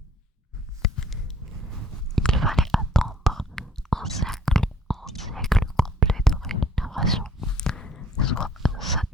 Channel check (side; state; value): both; normal; correlation 0.59